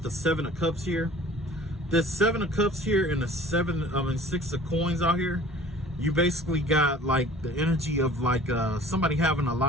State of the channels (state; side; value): normal; both; correlation 0.47